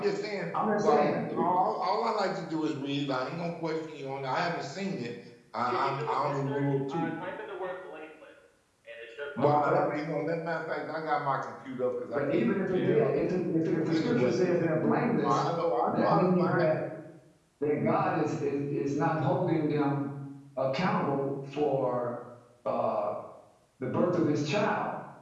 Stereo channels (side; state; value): both; identical; correlation 1.00